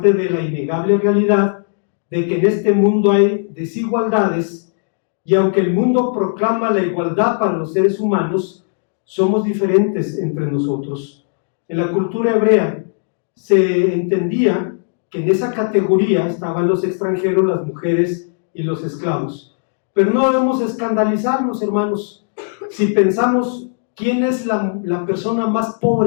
de la innegable realidad de que en este mundo hay desigualdades y aunque el mundo proclama la igualdad para los seres humanos, somos diferentes entre nosotros. En la cultura hebrea se entendía que en esa categoría estaban los extranjeros, las mujeres y los esclavos. Pero no debemos escandalizarnos, hermanos, si pensamos quién es la persona más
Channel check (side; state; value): right; silent; 68 dB below the other